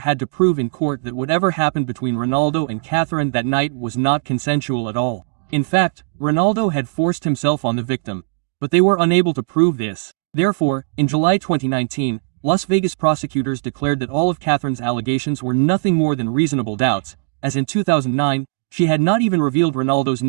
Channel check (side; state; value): left; quieter; 36.5 dB